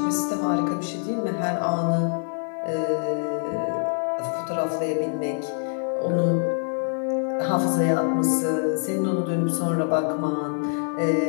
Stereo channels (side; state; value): right; silent; 62 dB below the other